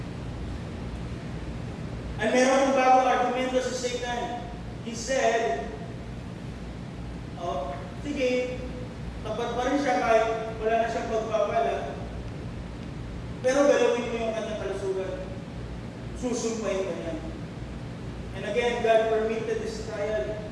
At meron ng bagong argumento sa Satan. He said, sige, tapat pa rin siya kahit wala na siyang pagpapala. Pero galawin mo yung kanyang kalusugan. Susumpahin ka niya. And again, God permitted this trial.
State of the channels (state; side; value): identical; both; correlation 1.00